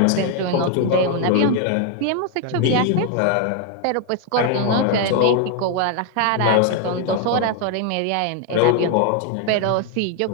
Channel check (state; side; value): different; both; correlation 0.01